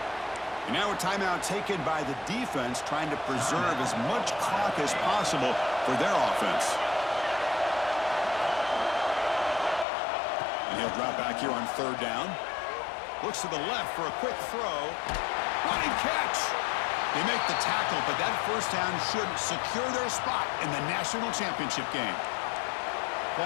And now a timeout taken by the defense, trying to preserve as much clock as possible for their offense. And he'll drop back here on 3rd down. Looks to the left for a quick throw. Running catch. They make the tackle, but that first down should secure their spot in the national championship game.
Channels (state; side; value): drops out; right; at 9.9 s